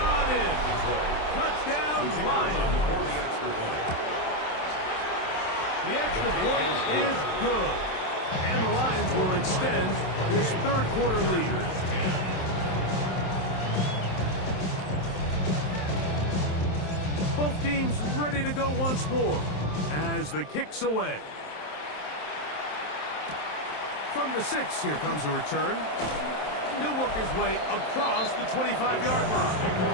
in. Touchdown, Lions. The extra point is good, and the Lions will extend this third quarter lead. Both teams ready to go once more as the kick's away. From the 6, here comes a return. He'll work his way across the 25-yard line.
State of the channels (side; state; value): right; late; 27 ms